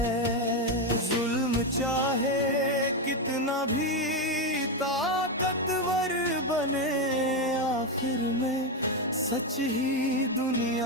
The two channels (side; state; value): both; normal; correlation 0.09